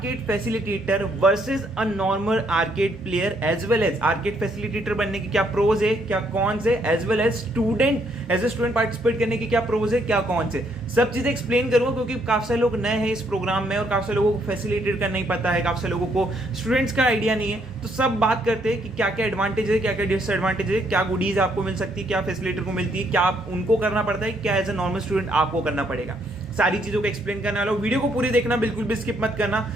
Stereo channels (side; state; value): both; normal; correlation 0.71